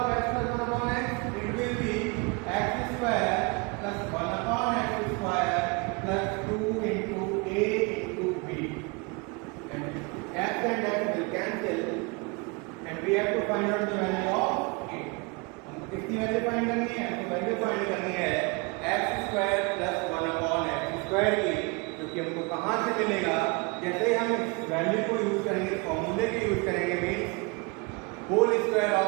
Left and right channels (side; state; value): left; quieter; 29.5 dB